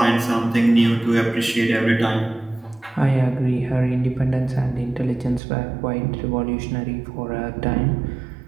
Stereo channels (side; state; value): left; drops out; at 5.4 s